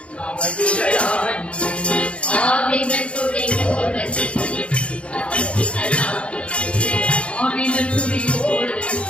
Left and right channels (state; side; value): late; right; 0.060 ms